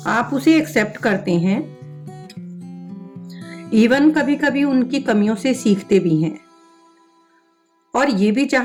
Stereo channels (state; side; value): identical; both; correlation 1.00